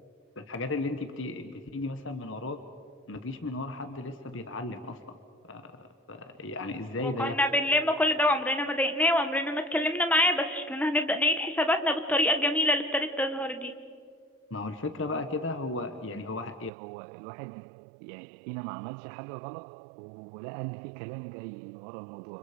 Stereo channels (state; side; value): drops out; left; at 16.7 s